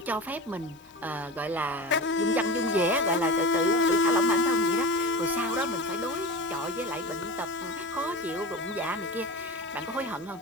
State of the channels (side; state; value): both; normal; correlation 0.30